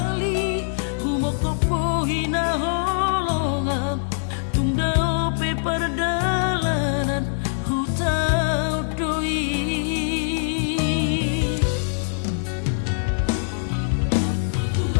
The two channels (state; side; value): silent; right; digital silence